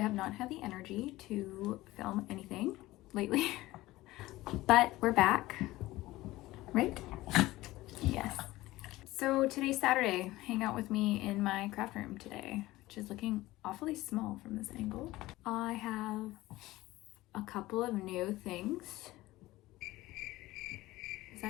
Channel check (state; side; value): quieter; right; 17.9 dB